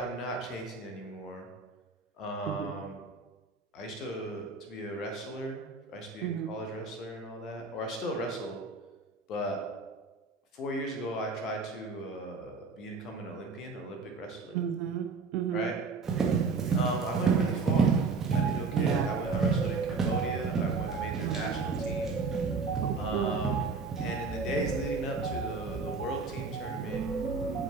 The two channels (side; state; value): left; quieter; 4.3 dB